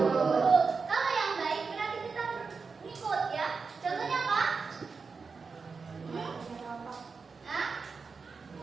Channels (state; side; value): quieter; left; 4.9 dB